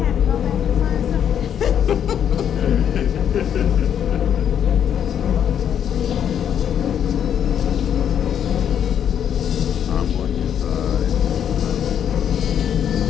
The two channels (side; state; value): right; quieter; 9.0 dB